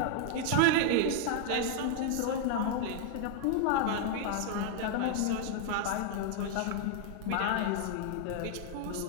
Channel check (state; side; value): different; both; correlation 0.00